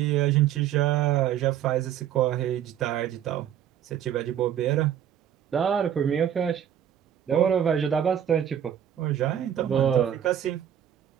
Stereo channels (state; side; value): quieter; left; 10.0 dB